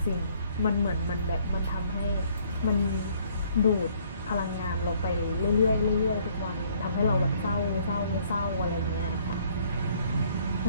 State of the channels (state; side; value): inverted; both; correlation -0.63